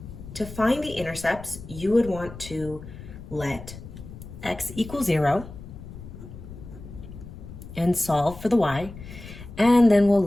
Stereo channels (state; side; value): noise; left; rumble, 14 dB below the sound